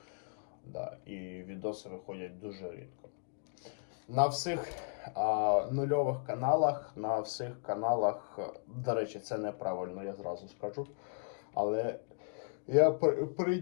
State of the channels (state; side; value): silent; right; digital silence